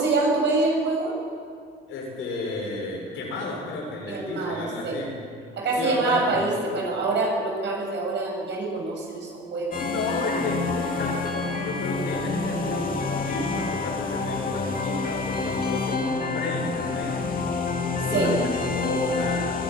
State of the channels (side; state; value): both; normal; correlation 0.35